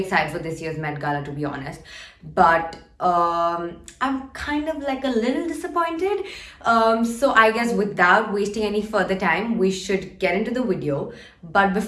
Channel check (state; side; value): identical; both; correlation 1.00